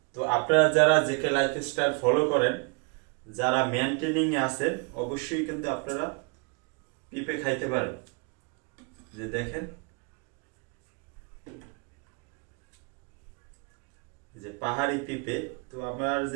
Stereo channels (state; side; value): quieter; left; 33.7 dB